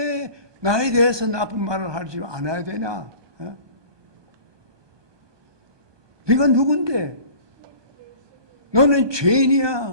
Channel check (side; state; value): left; late; 1.2 ms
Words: 나에 대해서 나쁜 말을 하지 않아야 되냐? 네가 누군데? 너는